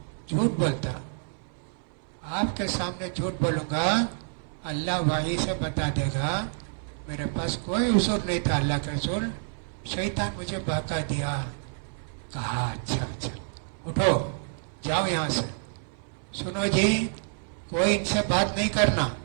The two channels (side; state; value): left; silent; 59 dB below the other